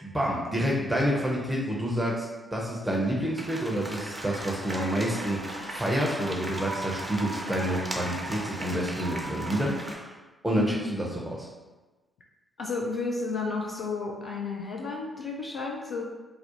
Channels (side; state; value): both; normal; correlation 0.74